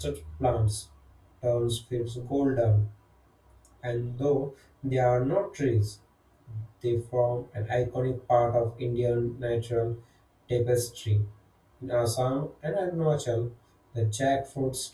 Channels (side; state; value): both; identical; correlation 1.00